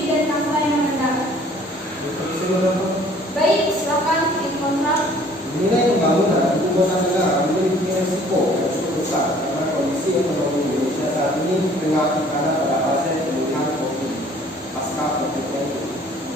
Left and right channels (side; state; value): both; normal; correlation 0.55